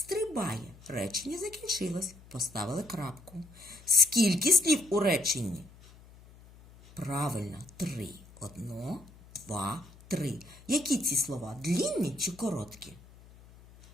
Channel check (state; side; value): noise; left; hum, 22 dB below the sound